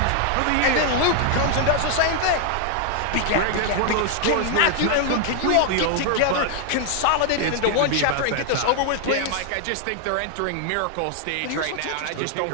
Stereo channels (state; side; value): different; both; correlation 0.00